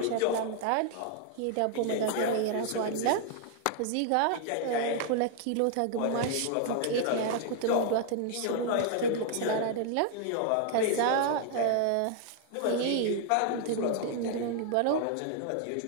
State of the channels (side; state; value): both; different; correlation 0.00